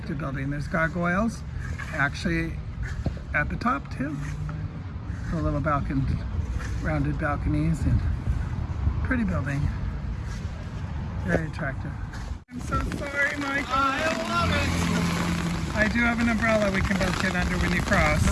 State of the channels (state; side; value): identical; both; correlation 1.00